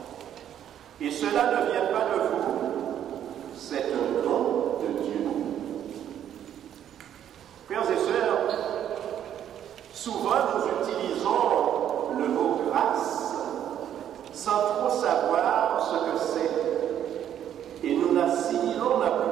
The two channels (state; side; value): quieter; left; 10.2 dB